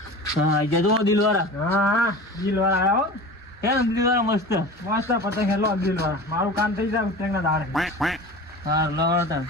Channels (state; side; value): normal; both; correlation 0.35